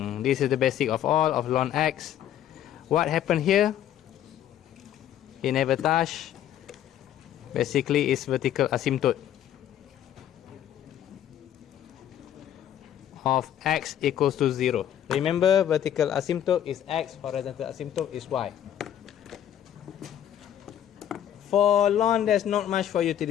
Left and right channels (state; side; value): quieter; right; 10.8 dB